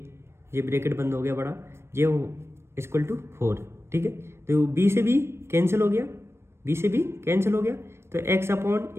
ये ब्रैकेट बंद हो गया बड़ा, ये इक्वल टू 4, ठीक है, तो b से b कैंसिल हो गया, b से b कैंसिल हो गया, तो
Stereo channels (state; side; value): late; left; 0.12 ms